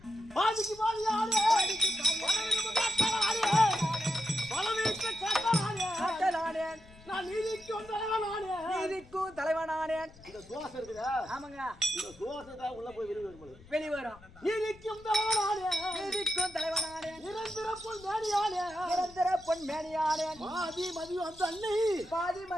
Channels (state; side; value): noise; left; rumble, 22 dB below the sound